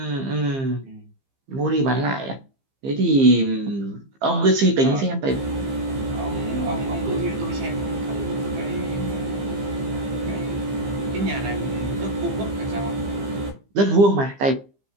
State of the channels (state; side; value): late; left; 15 ms